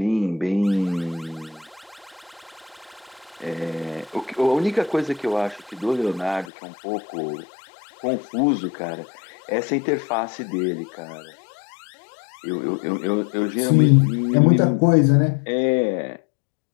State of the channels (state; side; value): drops out; right; at 6.5 s